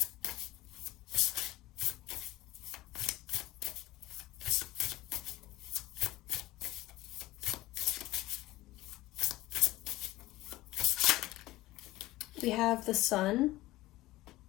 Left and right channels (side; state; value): right; quieter; 17.7 dB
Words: We have the Sun.